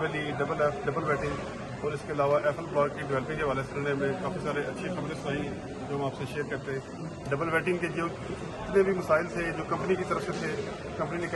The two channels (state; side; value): identical; both; correlation 1.00